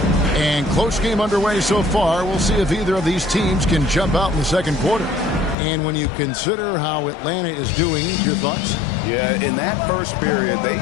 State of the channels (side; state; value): right; drops out; at 5.6 s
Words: And close game underway so far. We'll see if either of these teams can jump out in the second quarter. And when you consider how Atlanta is doing, your thoughts? Yeah, in that first period, they